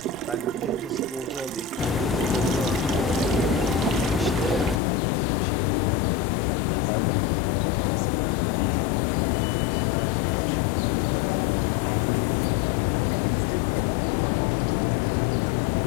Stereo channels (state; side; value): drops out; right; at 4.8 s